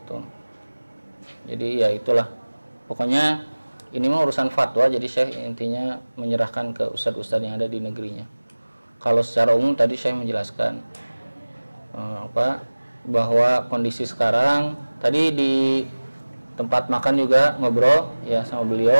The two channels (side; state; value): both; inverted; correlation -1.00